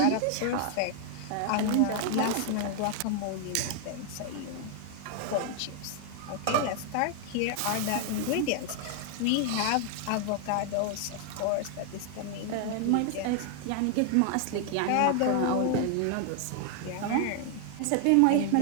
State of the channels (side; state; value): both; different; correlation 0.00